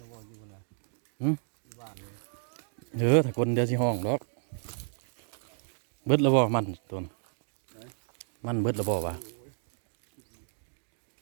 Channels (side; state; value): left; silent; 56 dB below the other